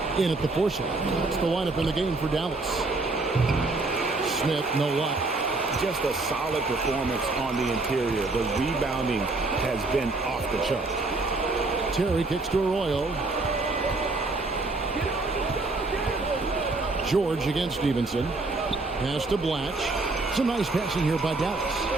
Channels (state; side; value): quieter; left; 3.3 dB